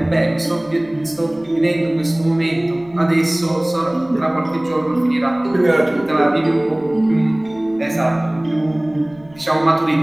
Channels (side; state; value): left; noise; rumble, 27 dB below the sound